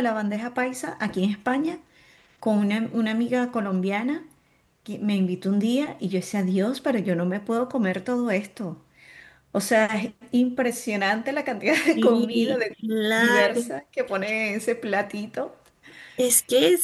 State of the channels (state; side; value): identical; both; correlation 1.00